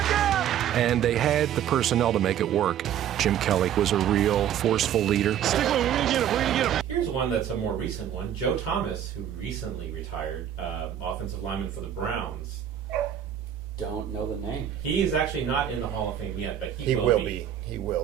again! And they had the personnel to make it work. Jim Kelly was a real forceful leader. Stick with him, we're going to get him, we're going to get him. Here's one that's a more recent one. Joe Thomas, who recently retired, offensive lineman for the Browns. Don't know the name. He's actually not in the Hall of Fame yet, but he will be. He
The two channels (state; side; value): quieter; left; 10.1 dB